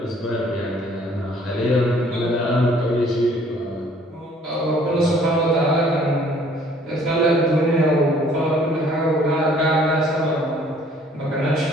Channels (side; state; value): both; normal; correlation 0.58